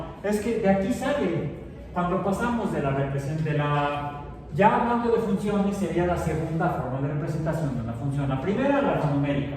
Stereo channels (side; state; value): both; identical; correlation 1.00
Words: es que de aquí sale, cuando pasamos de la representación, ya hablando de funciones, sería la segunda forma de representación de una función. La primera, la numérica,